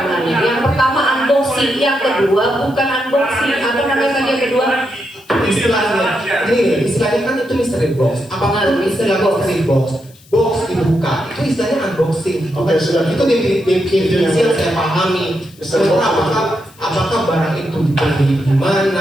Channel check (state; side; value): noise; left; hiss, 27 dB below the sound